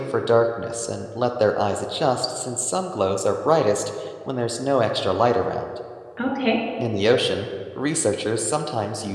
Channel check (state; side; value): identical; both; correlation 1.00